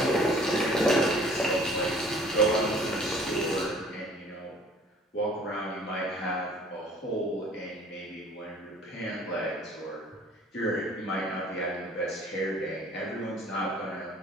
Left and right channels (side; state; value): both; normal; correlation 0.52